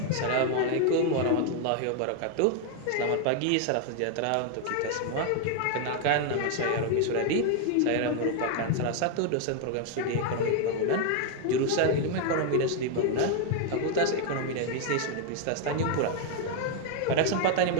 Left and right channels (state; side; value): different; both; correlation 0.01